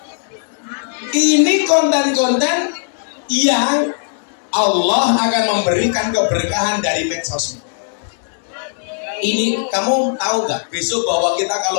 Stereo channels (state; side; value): silent; right; digital silence